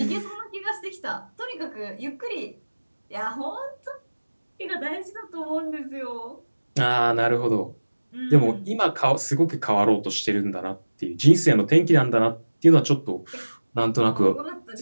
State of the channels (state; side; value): inverted; both; correlation -1.00